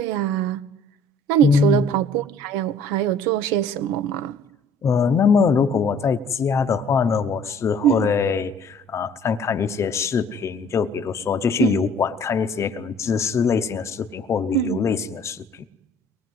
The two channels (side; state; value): both; normal; correlation 0.54